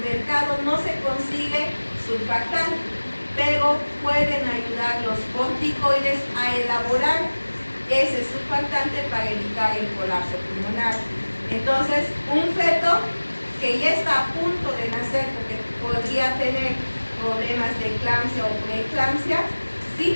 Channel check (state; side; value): inverted; both; correlation -1.00